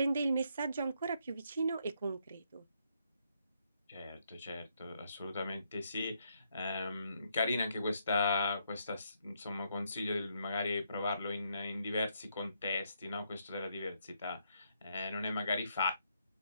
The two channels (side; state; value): both; inverted; correlation -0.76